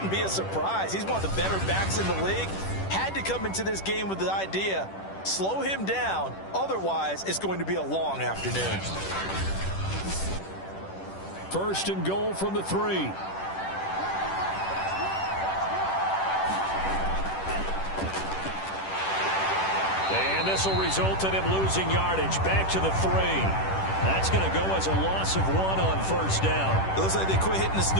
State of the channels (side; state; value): right; late; 10 ms